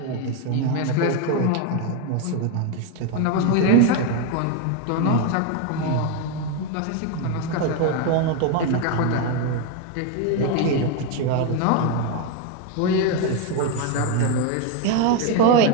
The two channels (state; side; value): different; both; correlation 0.02